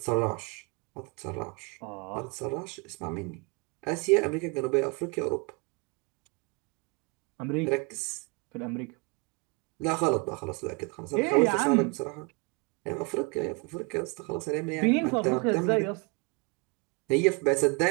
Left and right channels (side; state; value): left; quieter; 28.4 dB